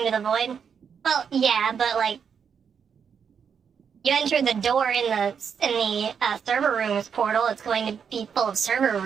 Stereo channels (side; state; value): left; quieter; 7.0 dB